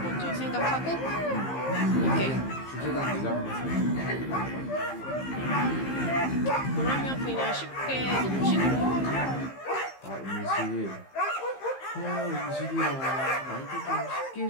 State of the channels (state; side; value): late; right; 15 ms